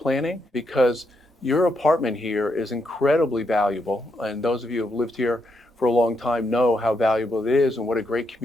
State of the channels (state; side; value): normal; both; correlation 0.79